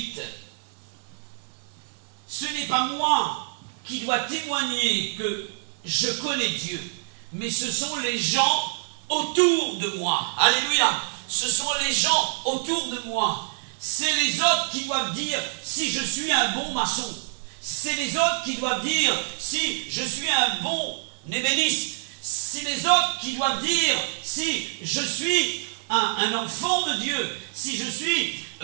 Ce n'est pas moi qui dois témoigner que je connais Dieu, mais ce sont les gens autour de moi. Alléluia! Ce sont les gens autour de moi. C'est les autres qui doivent dire si je suis un bon maçon. C'est les autres qui doivent dire si je suis un bon ébéniste. C'est les autres qui doivent dire si je suis un enfant de Dieu, si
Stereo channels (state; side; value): silent; left; digital silence